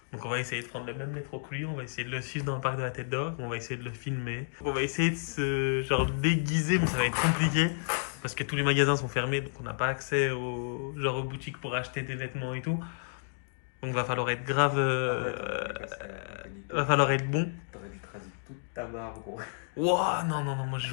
Donc on va essayer de prendre le même métro que lui, on va essayer de le suivre dans le parc de la Tête d'Or, on va essayer de le filmer. On va essayer de se genre déguiser, mais ça va être compliqué parce que tous les magasins sont fermés, donc on n'a pas accès aux boutiques pour acheter des vêtements et tout. Donc va falloir être grave, va falloir être bon. T'aurais dû te raser toute ta barbe, gros. Ouah, non, moi je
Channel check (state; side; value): silent; right; digital silence